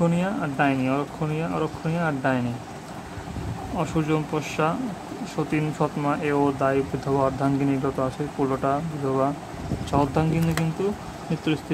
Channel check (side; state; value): both; identical; correlation 1.00